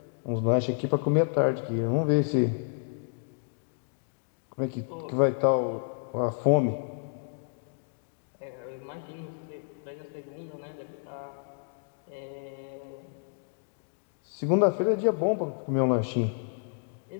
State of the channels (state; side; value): silent; right; digital silence